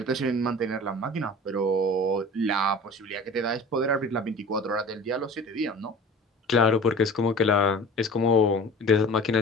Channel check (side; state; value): both; normal; correlation 0.41